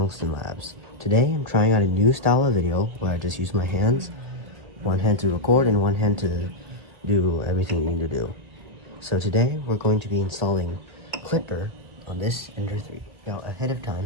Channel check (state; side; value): late; left; 1.7 ms